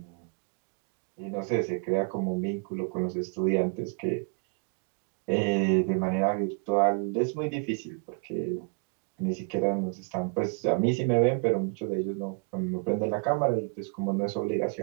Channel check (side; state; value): left; quieter; 38.6 dB